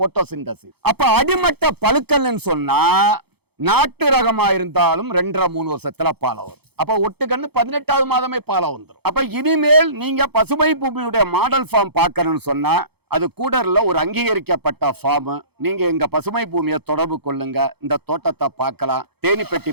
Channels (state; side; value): late; left; 0.97 ms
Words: அப்ப அடிமட்ட பழுக்கல்னு சொன்னா நாட்டு ரகமா இருந்தாலும் 2.5-3 வருஷத்துல பாலை வரும். அப்ப ஒட்டுக்கண்ணு 18வது மாதமே பாலை வந்துடும். அப்ப இனிமேல் நீங்க பசுமை பூமியுடைய மாடல் ஃபார்ம் பார்க்கணும்னு சொன்னா அது கூடர்ல ஒரு அங்கீகரிக்கப்பட்ட ஃபார்ம். நீங்க எங்க பசுமை பூமியை தொடர்பு கொள்ளுங்க. இந்த தோட்டத்தை பார்க்கலாம், தேனி பெட்டி